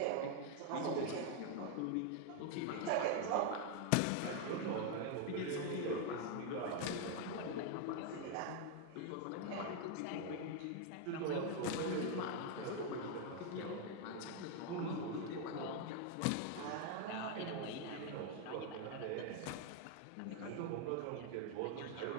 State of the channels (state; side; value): different; both; correlation 0.00